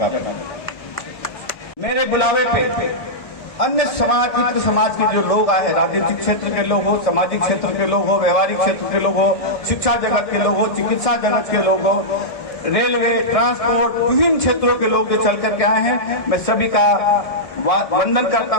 मेरे बुलावे पे अन्य समाज, इतर समाज के जो लोग आए, राजनीतिक क्षेत्र के लोग हो, सामाजिक क्षेत्र के लोग हो, व्यवहारिक क्षेत्र के लोग हो, शिक्षा जगत के लोग हो, चिकित्सा जगत के लोग हो, रेलवे, ट्रांसपोर्ट, विभिन्न क्षेत्रों के लोग जो चल करके आए हैं, मैं सभी का वंदन करता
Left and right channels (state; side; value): late; right; 1.7 ms